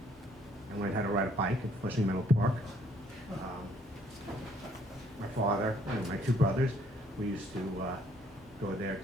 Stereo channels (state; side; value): normal; both; correlation 0.64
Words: I learned how to ride a bike at Flushing Meadow Park. My father and my 2 brothers, we used to go there